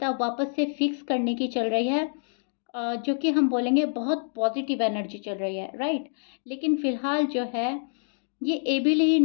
वापस से फिक्स करने की चल रही है, जो कि हम बोलेंगे बहुत पॉजिटिव एनर्जी चल रही है, राइट। लेकिन फिलहाल जो है ये एबल ही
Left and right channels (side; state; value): right; silent; digital silence